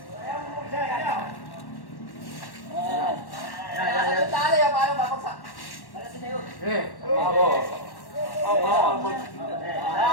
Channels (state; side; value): late; right; 1.1 ms